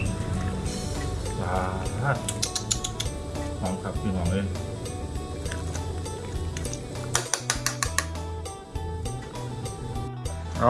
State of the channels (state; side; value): identical; both; correlation 1.00